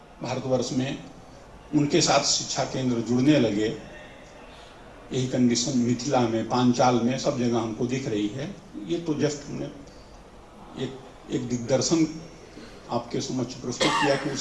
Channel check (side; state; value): both; identical; correlation 1.00